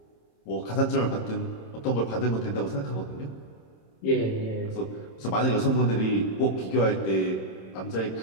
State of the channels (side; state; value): right; late; 27 ms